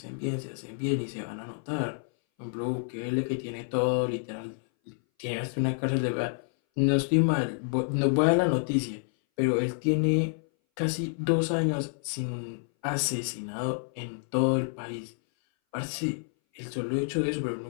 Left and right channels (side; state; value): right; silent; 59 dB below the other